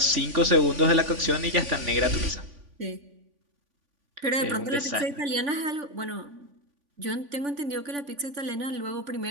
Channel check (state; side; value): late; left; 3.5 ms